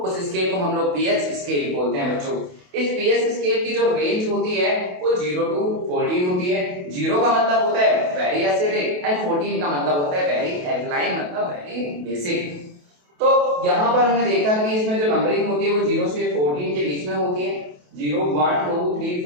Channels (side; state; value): left; late; 28 ms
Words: उस स्केल को हम लोग पीएच स्केल बोलते हैं बच्चों। इस पीएच स्केल की जो रेंज होती है वो 0 to 14 होती है। 0 का मतलब होता है वेरी एसिडिक एंड 14 का मतलब होता है वेरी एल्कलाइन, मतलब वेरी बेसिक। तो यहाँ पर हमने देखा कि इसमें जो नंबरिंग होती है वो 0 से 14 के बीच में होती है। 0 1 2 3